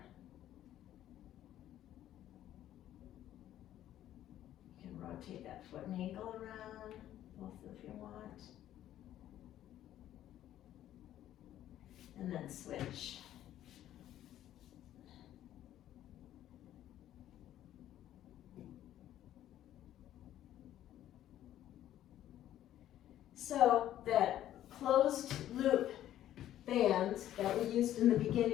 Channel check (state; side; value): quieter; right; 12.3 dB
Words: You can rotate that foot and ankle around, both if you want. And then switch. So that closed loop band that we used in the